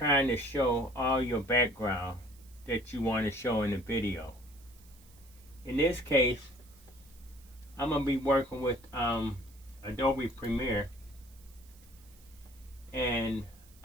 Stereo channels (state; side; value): noise; right; hiss, 26 dB below the sound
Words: to show all your background that you want to show in the video. In this case, I'm going to be working with Adobe Premiere. And